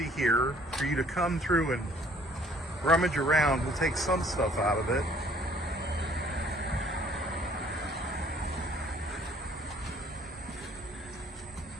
here for you to come through and rummage around. We'll take some stuff out of it.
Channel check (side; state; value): both; normal; correlation 0.58